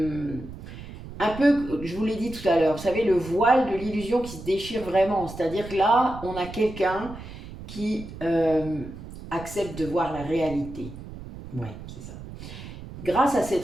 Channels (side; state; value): right; noise; rumble, 13 dB below the sound